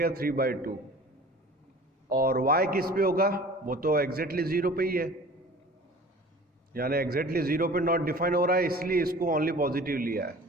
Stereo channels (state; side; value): normal; both; correlation 0.44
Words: 3/2, और y किस पे होगा, वो तो एग्जैक्टली 0 पे ही है, यानी एग्जैक्टली 0 पे नॉट डिफाइन हो रहा है, इसलिए इसको ओनली पॉजिटिव लिया है।